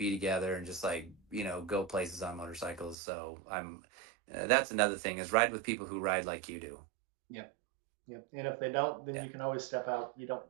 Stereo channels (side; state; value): left; drops out; at 3.0 s